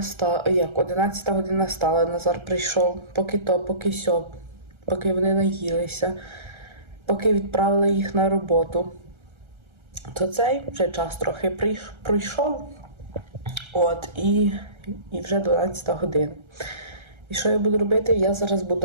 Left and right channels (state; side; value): late; left; 1.3 ms